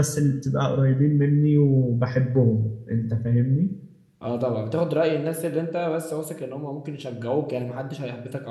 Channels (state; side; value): identical; both; correlation 1.00